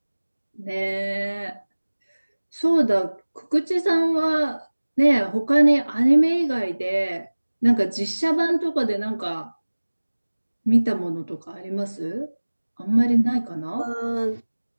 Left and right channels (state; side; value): inverted; both; correlation -1.00